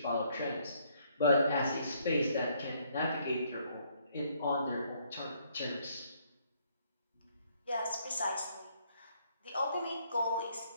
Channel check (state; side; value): inverted; both; correlation -0.68